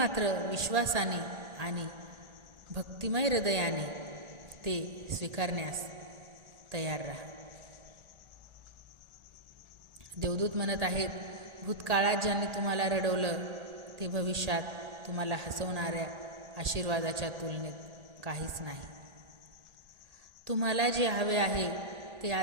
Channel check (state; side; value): late; left; 1.4 ms